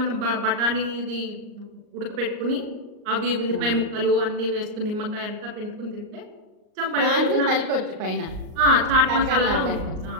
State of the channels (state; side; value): late; left; 38 ms